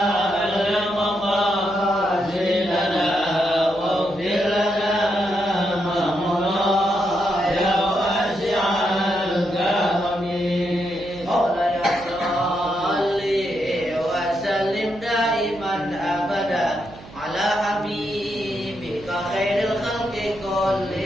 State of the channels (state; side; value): noise; right; hum, 19 dB below the sound